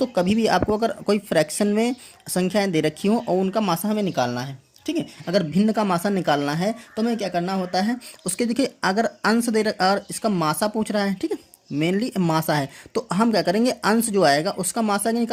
कभी भी आपको अगर कोई फ्रैक्शन में संख्याएं दे रखी हो और उनका मासा हमें निकालना है, ठीक है। अगर भिन्न का मासा निकालना है तो हमें क्या करना होता है, उसके देखिए अगर अंश दे रखा और इसका मासा पूछ रहा है, ठीक है, मेनली मासा है, तो हम क्या करेंगे, अंश जो आएगा उसका मासा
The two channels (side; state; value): both; identical; correlation 1.00